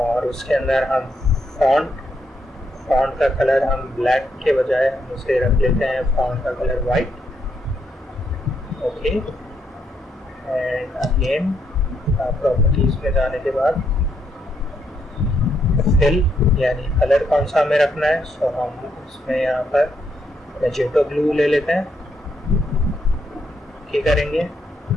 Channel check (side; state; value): both; normal; correlation 0.77